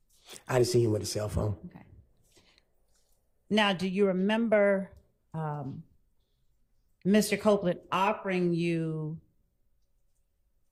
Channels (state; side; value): identical; both; correlation 1.00